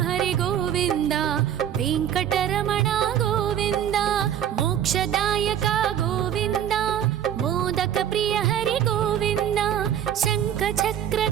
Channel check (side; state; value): left; quieter; 10.0 dB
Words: హరి గోవింద వెంకటరమణ గోవింద మోక్షదాయక గోవింద మోదక ప్రియ హరి గోవింద శంఖ